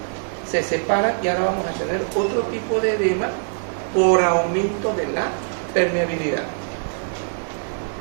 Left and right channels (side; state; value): left; silent; digital silence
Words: se separan y ahora vamos a tener otro tipo de edema por aumento de la permeabilidad.